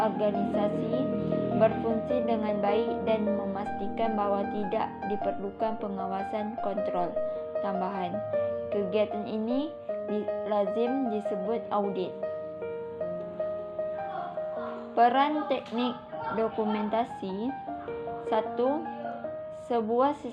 berfungsi dengan baik dan memastikan bahwa tidak diperlukan pengawasan kontrol tambahan. Kegiatan ini lazim disebut audit. Peran teknik dokumentasi. 1. Sebuah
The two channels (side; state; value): both; identical; correlation 1.00